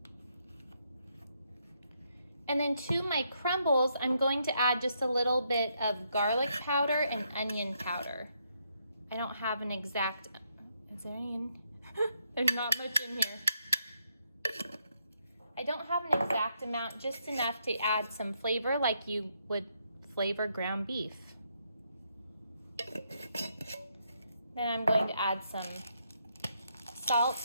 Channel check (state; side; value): inverted; both; correlation -0.76